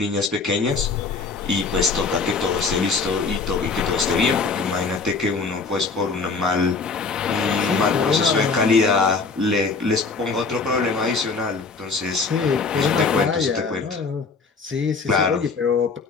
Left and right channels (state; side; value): quieter; right; 4.5 dB